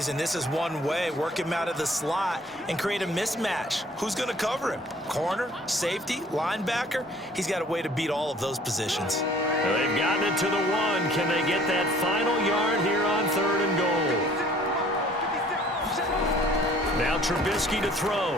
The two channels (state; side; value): normal; both; correlation 0.54